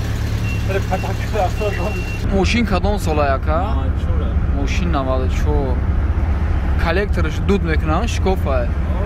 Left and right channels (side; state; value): both; identical; correlation 1.00